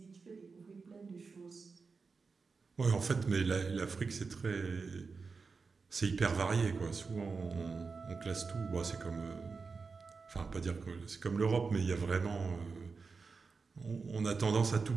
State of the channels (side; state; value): left; quieter; 4.7 dB